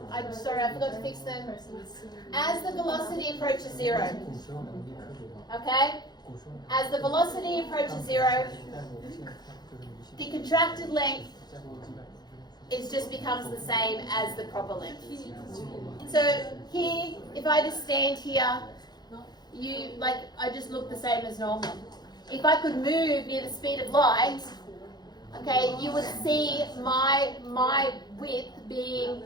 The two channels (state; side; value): late; right; 0.20 ms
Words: I'm sorry, I forgot to fix them. As the velocity approaches zero, okay? As the velocity approaches zero, the contracted length just becomes the same as the proper length. So here, if I just stand here, I just look the same as normal. If I could move near the speed of light, okay, you would see my width being